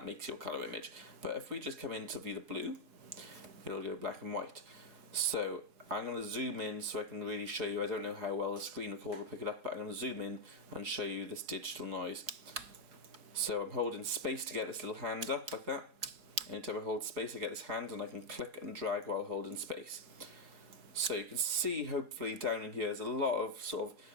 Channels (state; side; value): late; left; 4.7 ms